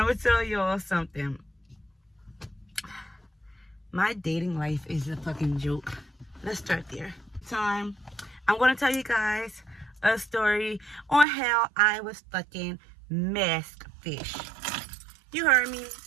gonna tell y'all something. My dating life is a fucking joke. Let's start there. I'm gonna tell you guys a story on how I was fucking masked fish. You heard me.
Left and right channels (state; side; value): drops out; left; at 11.2 s